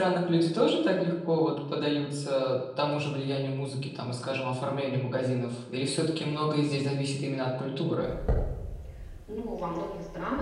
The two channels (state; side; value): identical; both; correlation 1.00